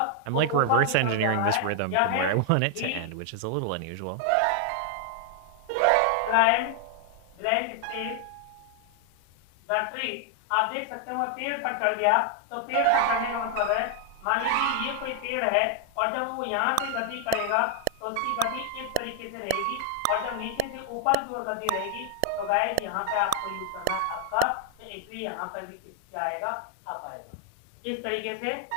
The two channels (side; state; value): both; different; correlation 0.00